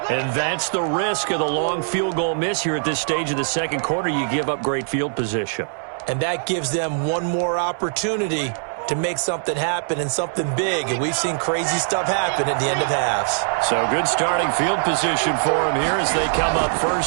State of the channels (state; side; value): silent; left; 64 dB below the other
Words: And that's the risk of the long field goal miss here at this stage of the 2nd quarter. You give up great field position. And that gives them one more opportunity to make something happen and something big. And we've seen crazy stuff happen at the end of halves. So good starting field position for them here as they come up